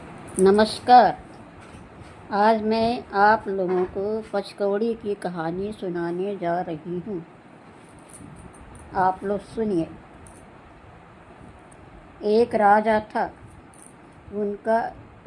नमस्कार। आज मैं आप लोगों को पचकौड़ी की कहानी सुनाने जा रही हूँ। आप लोग सुनिए। एक राजा था, उनका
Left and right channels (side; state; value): both; identical; correlation 1.00